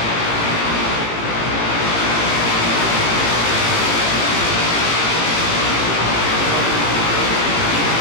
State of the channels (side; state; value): right; late; 17 ms